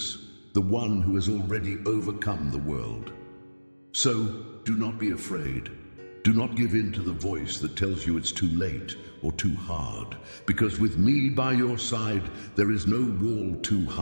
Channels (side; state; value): both; inverted; correlation -1.00